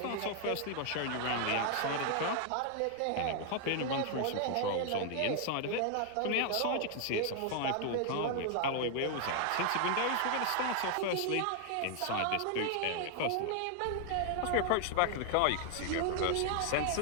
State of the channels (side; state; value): both; different; correlation 0.00